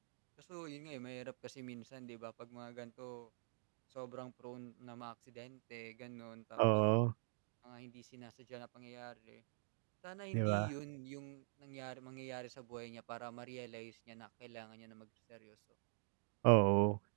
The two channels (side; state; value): left; silent; digital silence